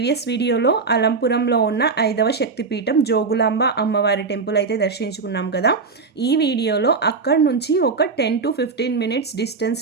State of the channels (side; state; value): left; quieter; 4.6 dB